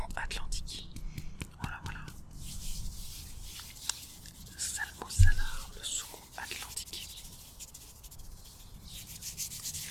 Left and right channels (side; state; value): both; identical; correlation 1.00